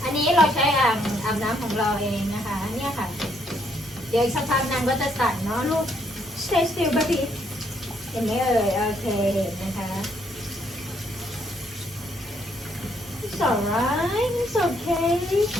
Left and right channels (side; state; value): both; normal; correlation 0.71